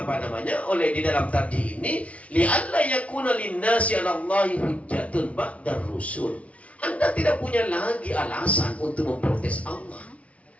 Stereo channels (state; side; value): late; right; 0.065 ms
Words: dalam tadi ini, li'alla yakuna linnasi 'alallahi hujjatun ba'dar rusul. Anda tidak punya lagi alasan untuk memprotes Allah.